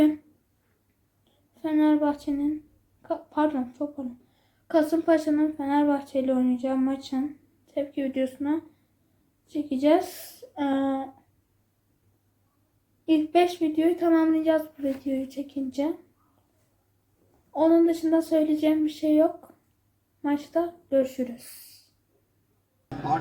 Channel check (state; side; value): identical; both; correlation 1.00